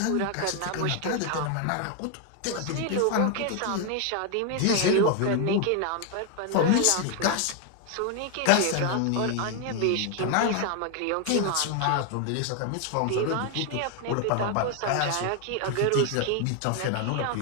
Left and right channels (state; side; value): different; both; correlation 0.01